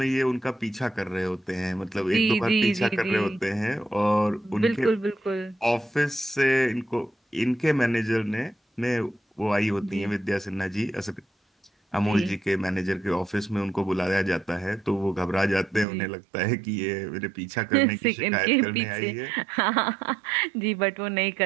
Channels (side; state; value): left; drops out; at 15.9 s